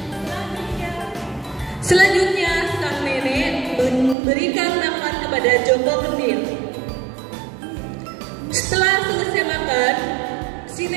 Selanjutnya sang nenek memberikan makan kepada Joko Kendil. Setelah selesai makan, si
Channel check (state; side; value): drops out; left; at 4.2 s